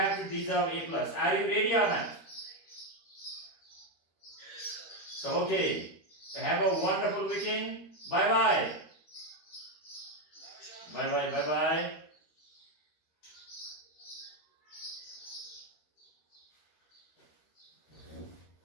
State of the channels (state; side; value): late; right; 13 ms